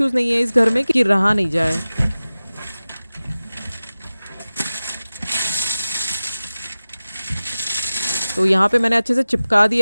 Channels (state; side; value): inverted; both; correlation -0.96